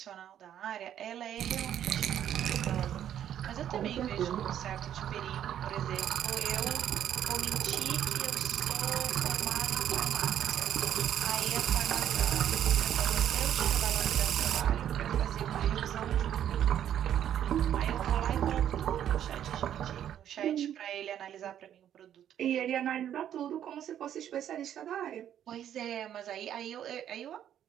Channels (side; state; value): left; quieter; 10.4 dB